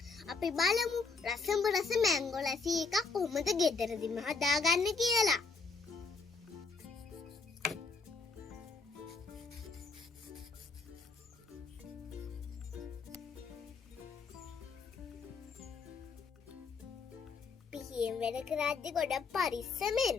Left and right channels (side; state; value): right; quieter; 4.4 dB